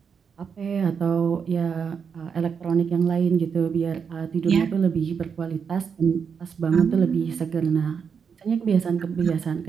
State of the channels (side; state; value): left; quieter; 6.5 dB